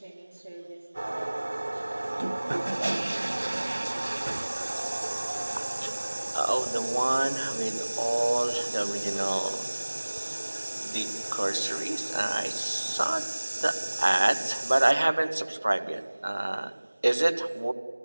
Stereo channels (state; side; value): inverted; both; correlation -1.00